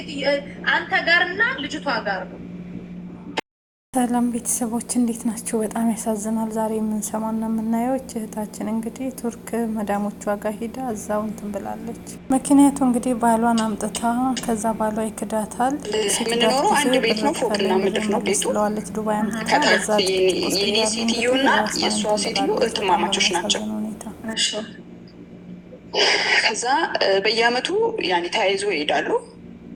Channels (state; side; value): identical; both; correlation 1.00